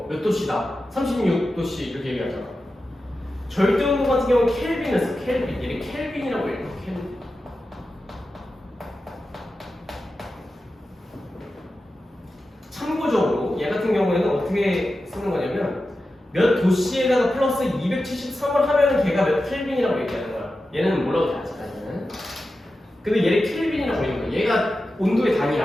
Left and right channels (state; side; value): normal; both; correlation 0.92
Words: 몇 도씨다 36도씨 이렇게 얘기하잖아. 절대 온도 같은 경우는 켈빈을 써. 켈빈. 얘를 켈빈이라고 해요. 켈빈. 참고적으로 얘 같은 경우에는 어떻게 쓰는 거냐면 몇 도씨에다가 플러스 273을 하면 걔가 몇 켈빈이라고 얘기하는 거야. 얘는 뭐라고 다 하잖아. 얘는. 근데 얘를 켈빈이라고 하는 거야. 얘가 온도의